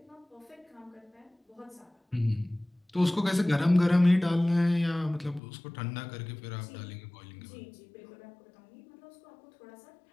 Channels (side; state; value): right; drops out; at 5.4 s